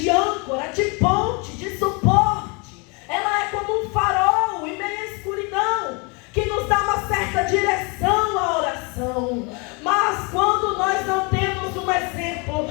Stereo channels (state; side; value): quieter; right; 31.2 dB